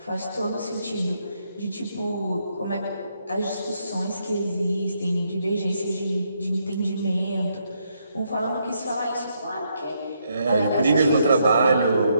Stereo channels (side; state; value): both; inverted; correlation -0.76